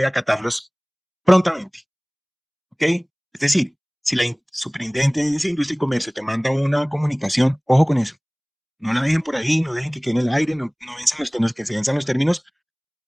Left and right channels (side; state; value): both; identical; correlation 1.00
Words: acatarlos prontamente. ¿Ok? Es decir, si la Superintendencia de Industria y Comercio te manda una comunicación, ojo con eso. No la dejen por ahí, no dejen que quede en el aire, no venzan los términos, que se venzan los términos,